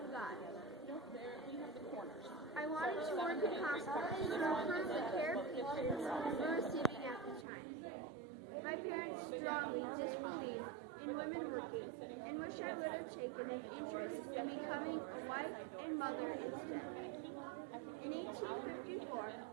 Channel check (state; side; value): drops out; left; at 7.5 s